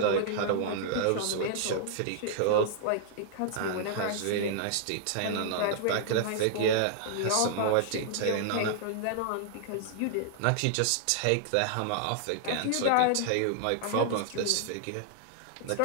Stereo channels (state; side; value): different; both; correlation -0.01